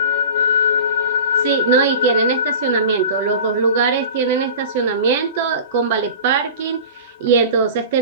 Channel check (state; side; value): inverted; both; correlation -0.36